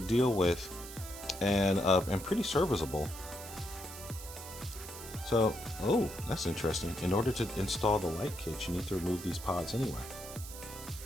with and pretty serviceable. So, oh, that's interesting. In order to install the light kit, you need to remove these pods anyway.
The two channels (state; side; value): noise; right; hiss, 12 dB below the sound